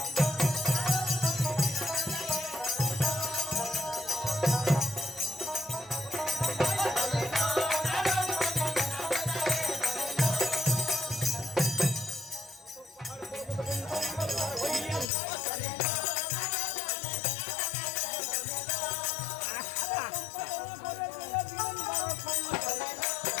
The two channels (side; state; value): right; drops out; at 15.1 s